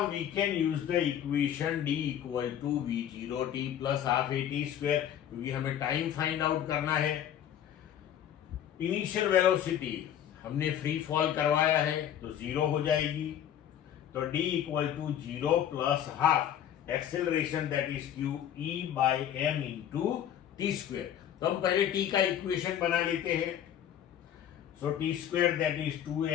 we can use the equation D equal to V0t plus half AT square, क्योंकि हमें time find out करना है. Initial velocity हमने free fall करवाया है तो 0 हो जाएगी, तो D equal to 0 plus half acceleration that is q E by m into t square. तो हम पहले टी का इक्वेशन बना लेते हैं. So t square that is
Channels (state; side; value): quieter; right; 10.2 dB